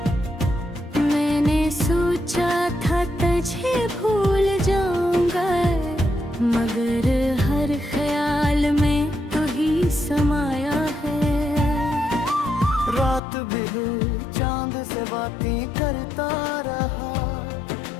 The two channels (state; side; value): drops out; right; at 13.2 s